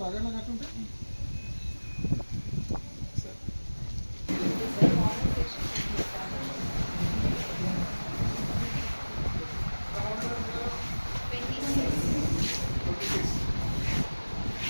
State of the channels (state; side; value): inverted; both; correlation -1.00